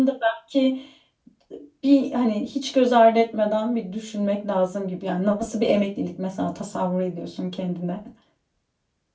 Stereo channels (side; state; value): both; identical; correlation 1.00